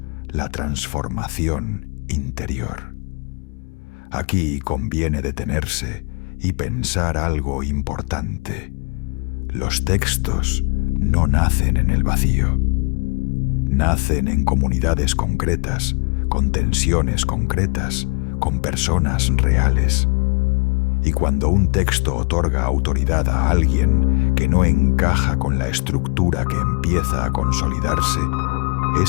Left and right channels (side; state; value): right; quieter; 32.0 dB